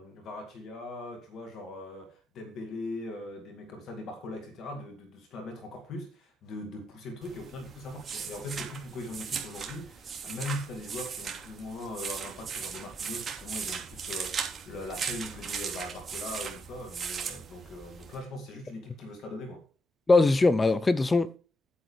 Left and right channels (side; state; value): both; normal; correlation 0.83